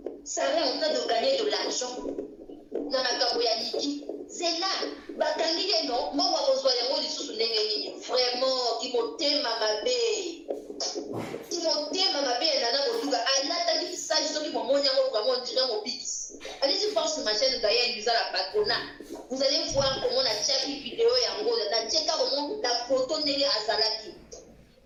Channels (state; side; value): identical; both; correlation 1.00